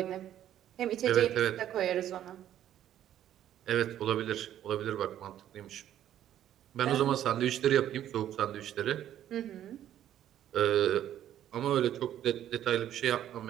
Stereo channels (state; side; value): quieter; left; 11.4 dB